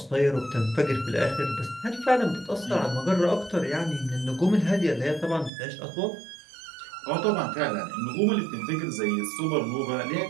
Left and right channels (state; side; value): drops out; left; at 5.5 s